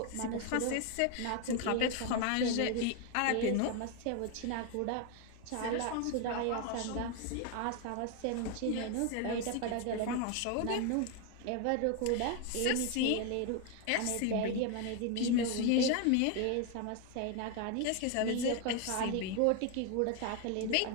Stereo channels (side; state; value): both; different; correlation 0.01